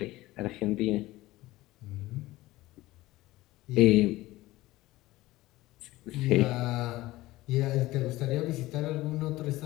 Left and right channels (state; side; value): quieter; right; 18.0 dB